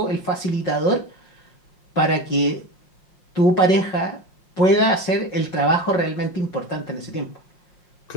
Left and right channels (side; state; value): right; late; 5.5 ms